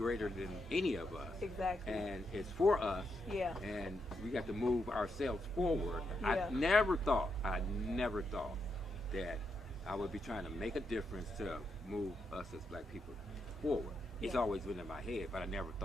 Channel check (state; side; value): normal; both; correlation 0.82